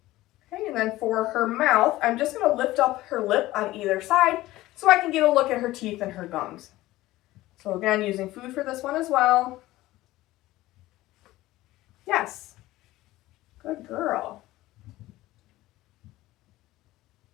Okay, and then for her mouth, I'm just going to lift up her lip on either side so I can get a look at her teeth and her gums. So again, using food for this one as well. Yes. Good girl.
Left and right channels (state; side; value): quieter; right; 17.1 dB